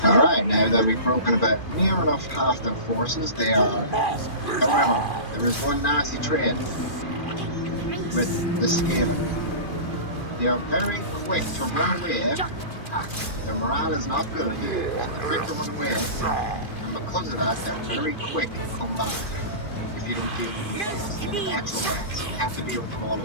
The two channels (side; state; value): right; late; 2.4 ms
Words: Alright, now that we've broken about near enough half their forces, they are... However, there is one nasty trait with the Skaven. They are very quick to run away. Their morale is not good, so they're quick to run away, and because of that, they're very quick to come back if you don't deal with them fast. And the actual rats, you have to deal with them all